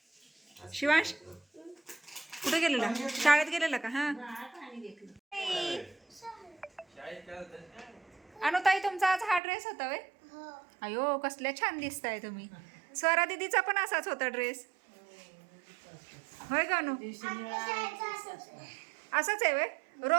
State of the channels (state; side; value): drops out; left; at 9.4 s